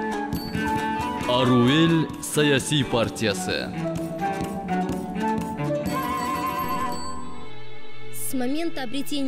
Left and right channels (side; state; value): both; identical; correlation 1.00